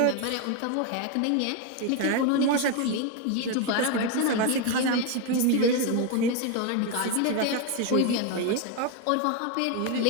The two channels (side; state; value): both; different; correlation 0.02